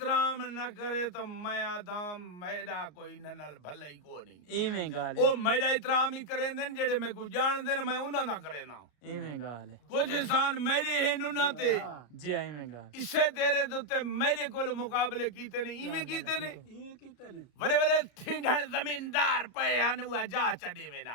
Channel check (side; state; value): right; late; 33 ms